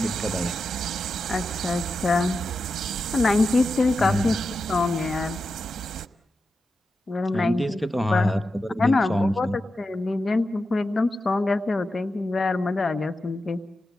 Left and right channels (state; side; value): normal; both; correlation 0.89